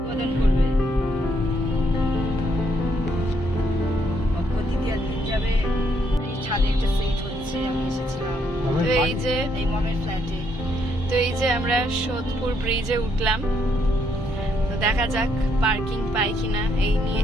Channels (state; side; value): normal; both; correlation 0.73